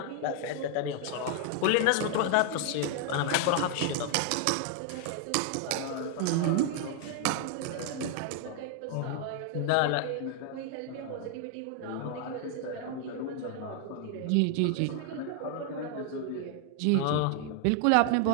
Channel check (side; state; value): both; different; correlation 0.00